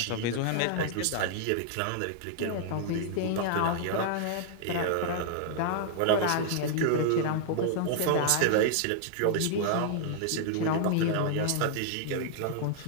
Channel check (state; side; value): different; both; correlation -0.01